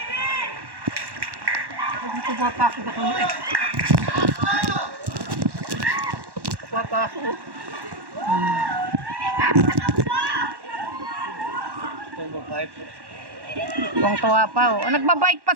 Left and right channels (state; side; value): late; left; 1.1 ms